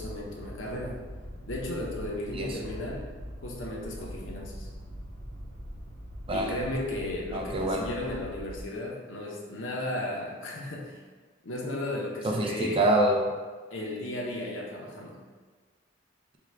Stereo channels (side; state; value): both; normal; correlation 0.29